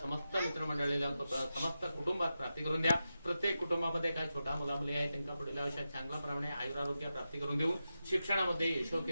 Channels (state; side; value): inverted; both; correlation -0.90